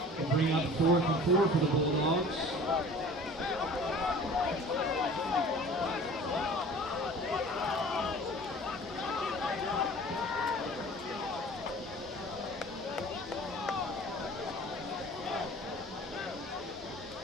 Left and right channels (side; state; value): both; normal; correlation 0.44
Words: Bring up 4th and 4 for the Bulldogs.